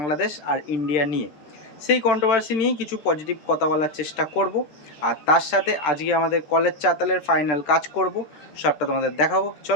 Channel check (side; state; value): right; late; 13 ms